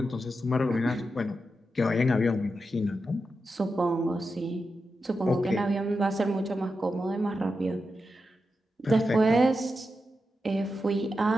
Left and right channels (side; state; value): both; normal; correlation 0.89